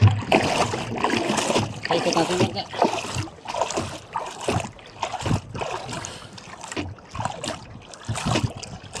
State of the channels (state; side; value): identical; both; correlation 1.00